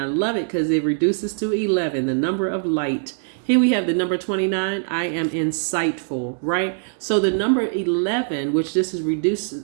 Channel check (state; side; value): silent; left; digital silence